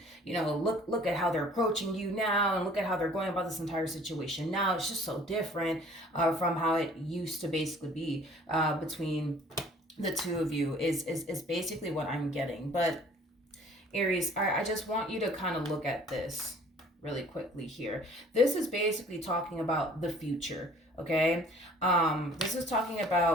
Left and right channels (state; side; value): normal; both; correlation 0.53